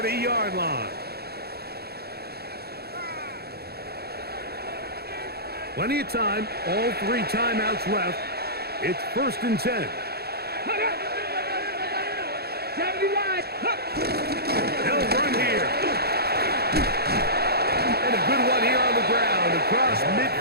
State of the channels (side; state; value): left; late; 0.46 ms